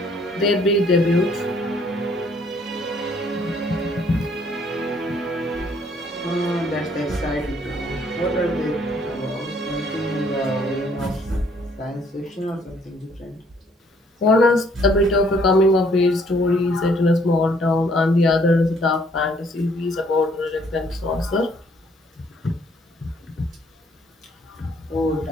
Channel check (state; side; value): normal; both; correlation 0.64